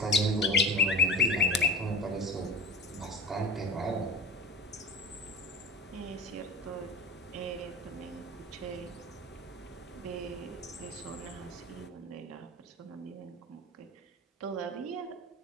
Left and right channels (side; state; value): both; normal; correlation 0.32